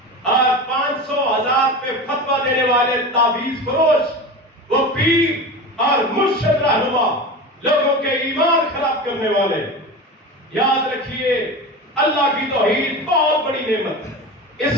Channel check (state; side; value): normal; both; correlation 0.28